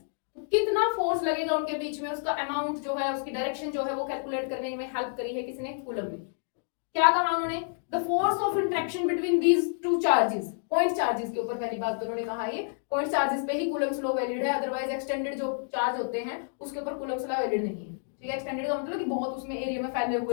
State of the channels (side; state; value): right; silent; digital silence